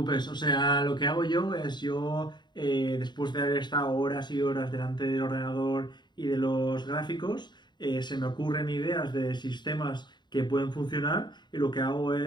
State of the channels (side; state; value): right; late; 0.21 ms